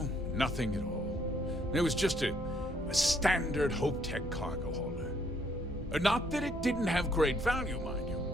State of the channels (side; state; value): both; normal; correlation 0.68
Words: nothing at all. It was just a standard HopeTech cargo hauler. Not that it didn't have great value, mind you.